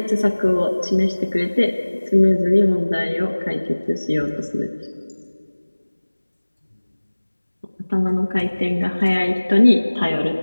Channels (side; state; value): both; inverted; correlation -1.00